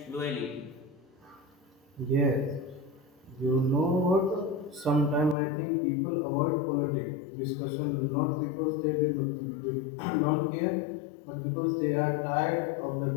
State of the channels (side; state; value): right; drops out; at 5.4 s